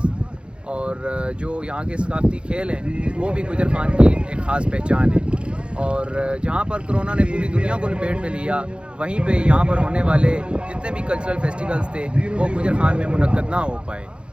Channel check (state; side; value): late; left; 0.057 ms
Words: और जो यहाँ के सकाफ़ती खेल हैं वो भी गुजर खान की एक ख़ास पहचान है। और जहाँ पर कोरोना ने पूरी दुनिया को लपेट में लिया, वहीं पे यहाँ पर होने वाले जितने भी कल्चरल फेस्टिवल्स थे वो गुजर खान में मुनक्कद ना हो पाए।